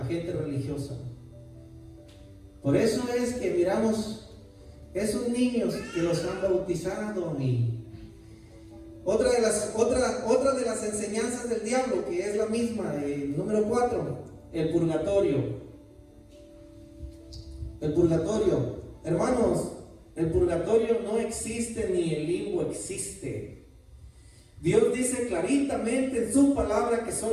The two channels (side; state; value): both; identical; correlation 1.00